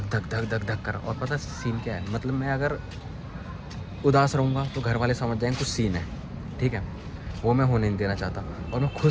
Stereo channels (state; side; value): identical; both; correlation 1.00